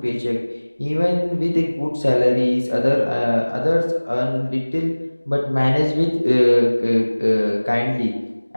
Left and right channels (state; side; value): inverted; both; correlation -1.00